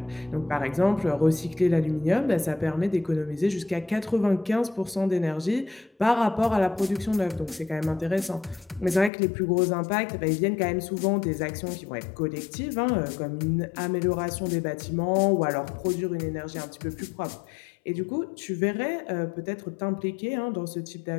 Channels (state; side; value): drops out; right; at 9.1 s